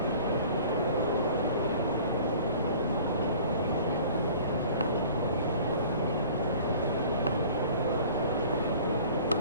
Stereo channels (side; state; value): both; inverted; correlation -0.47